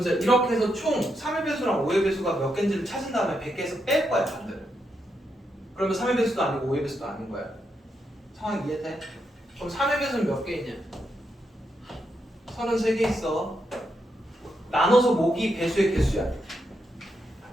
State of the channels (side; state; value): both; normal; correlation 0.82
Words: 이렇게 해서 총 3의 배수랑 5의 배수가 몇 개인지를 찾은 다음에 100개에서 뺄 거야, 반대로. 그러면 3의 배수도 아니고 5의 배수도 아닌 거야. 상황 이해돼? 그럼 3의 배수는 몇 개이냐? 33개 있어. 나눠서 목이 배수의 개수야.